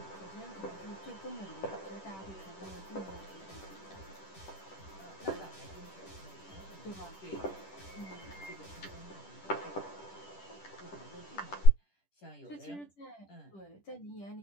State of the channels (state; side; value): late; right; 10 ms